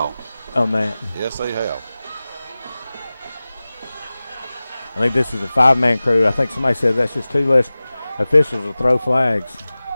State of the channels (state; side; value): inverted; both; correlation -0.98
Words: On that. Yes, they have. I think this is a 5-man crew. I think somebody said that's just 2 less officials to throw flags.